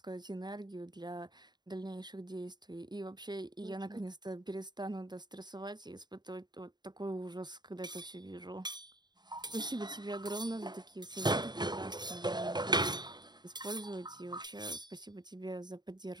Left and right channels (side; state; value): left; late; 0.21 ms